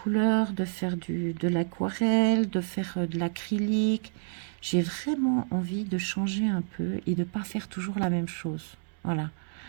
de faire de l'aquarelle, de faire de l'acrylique. J'ai vraiment envie de changer un peu et de ne pas faire toujours la même chose. Voilà.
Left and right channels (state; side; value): silent; left; digital silence